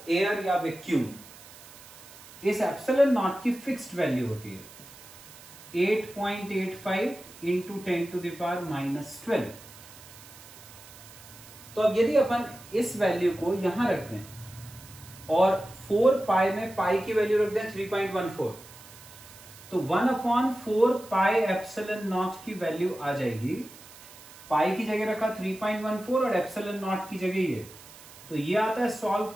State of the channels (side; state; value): right; noise; hiss, 19 dB below the sound